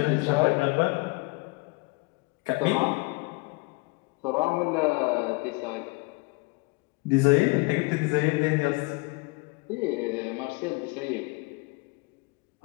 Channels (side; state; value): right; quieter; 27.4 dB